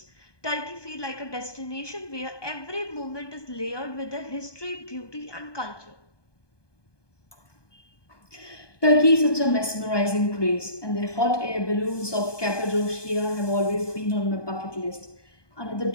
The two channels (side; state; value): right; late; 1.2 ms